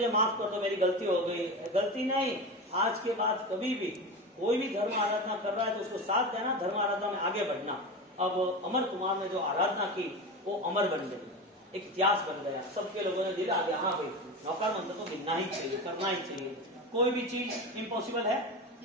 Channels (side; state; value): both; normal; correlation 0.24